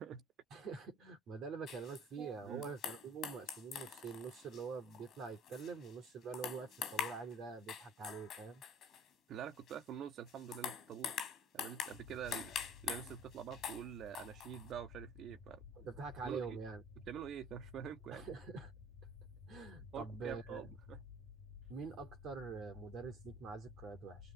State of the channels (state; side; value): normal; both; correlation 0.51